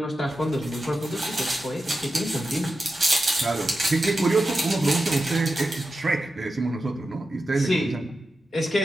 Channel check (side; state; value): both; normal; correlation 0.91